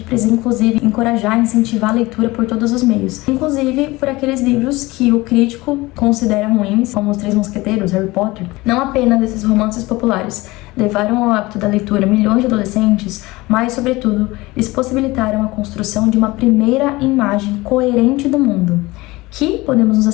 precisa, inclusive, encorajar e incentivar a leitura por todos os meios, inclusive por aqueles livros que o crítico considera ruins, como Os Três Mosqueteiros, Harry Potter. Não apenas esses romances populares levaram ao hábito da leitura milhões de adolescentes, mas, sobretudo, eles possibilitaram a construção de uma primeira imagem coerente do mundo, que, podemos nos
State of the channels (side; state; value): right; quieter; 21.0 dB